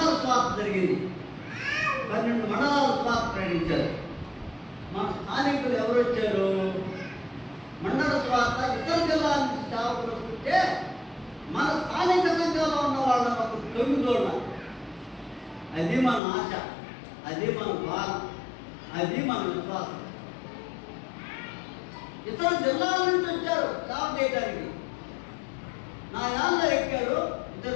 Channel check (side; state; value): right; drops out; at 16.2 s